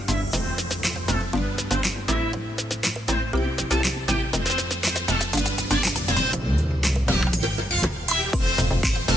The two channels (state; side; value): normal; both; correlation 0.80